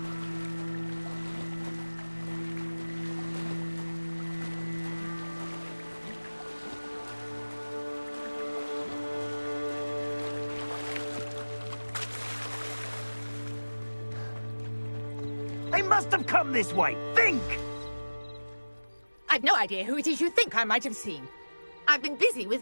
They must have come this way. Think! I've no idea who it is you think I might have seen. I've been busy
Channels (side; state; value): both; inverted; correlation -1.00